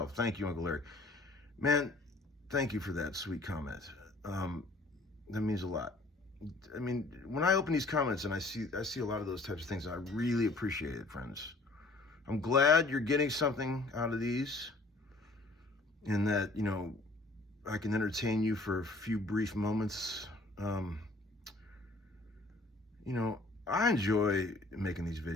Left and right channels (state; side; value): quieter; right; 3.0 dB